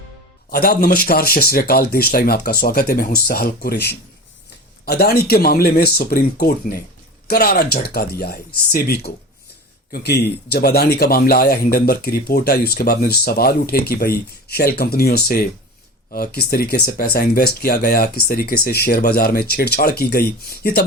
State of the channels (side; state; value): both; normal; correlation 0.32